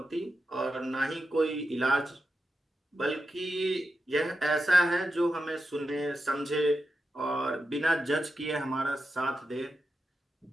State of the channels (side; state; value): both; normal; correlation 0.88